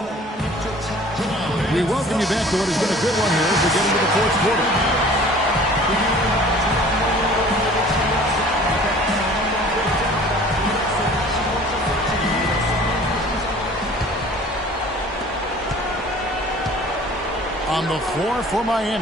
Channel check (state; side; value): normal; both; correlation 0.48